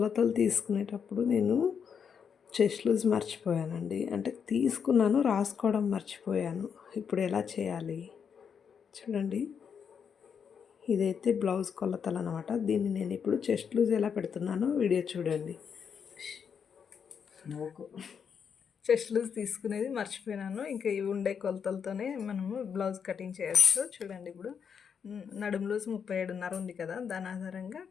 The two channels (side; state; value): right; quieter; 7.0 dB